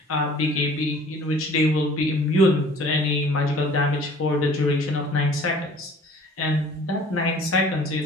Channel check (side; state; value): both; normal; correlation 0.50